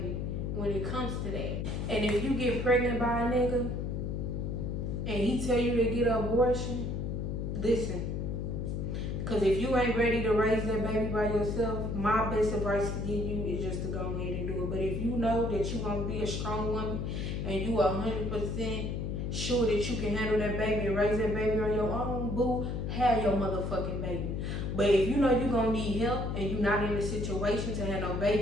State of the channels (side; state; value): left; noise; hum, 2 dB below the sound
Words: when it comes to that. And if you get pregnant by a nigga and he tell you to get an abortion, listen. Because if you ain't ready to raise that baby by yourself, my best advice to give you is just to go ahead and do it. But if you know that you're going to be a strong woman and you are 100% sure that you can handle that baby and raise that baby on your own, boo, have your motherfucking baby. But if you know you're going to need help and you're not in a situation to have no